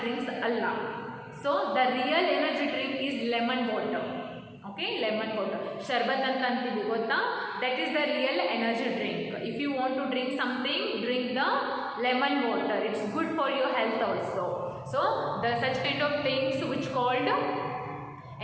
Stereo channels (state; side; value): identical; both; correlation 1.00